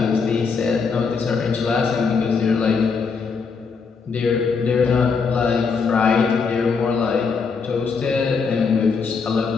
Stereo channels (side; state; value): right; quieter; 5.2 dB